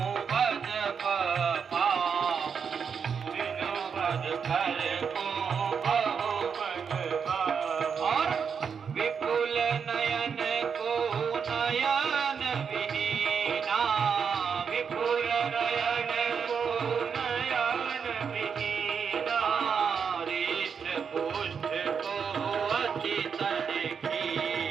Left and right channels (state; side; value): quieter; left; 6.5 dB